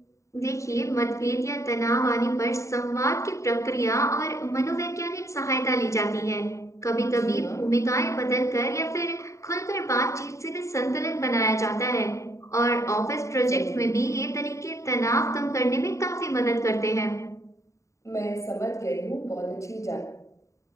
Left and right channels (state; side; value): late; right; 0.15 ms